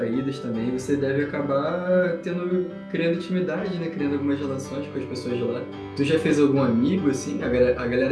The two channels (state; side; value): identical; both; correlation 1.00